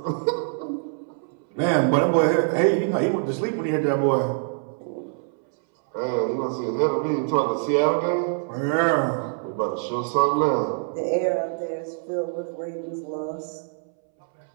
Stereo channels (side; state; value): left; silent; 62 dB below the other